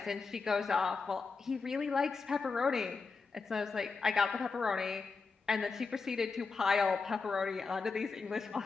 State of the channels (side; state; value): right; quieter; 4.6 dB